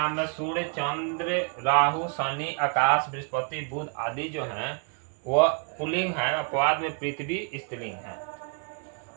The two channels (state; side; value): quieter; left; 37.4 dB